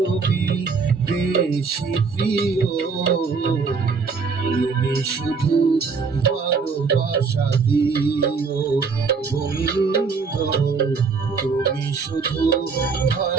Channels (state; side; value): quieter; left; 5.0 dB